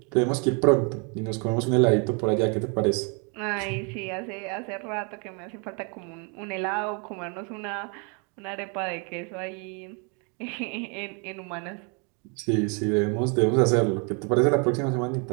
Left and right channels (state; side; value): quieter; left; 35.6 dB